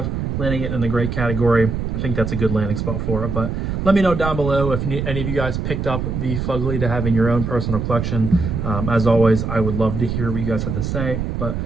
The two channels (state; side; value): noise; right; rumble, 3 dB below the sound